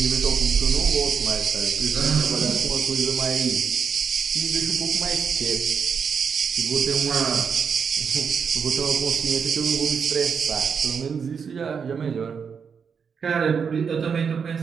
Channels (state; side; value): quieter; left; 6.4 dB